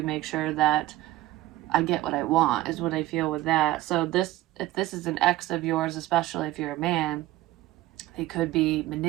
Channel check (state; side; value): quieter; left; 16.6 dB